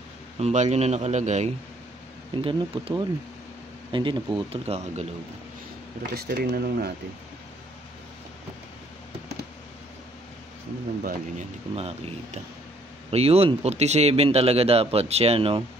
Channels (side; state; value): both; normal; correlation 0.64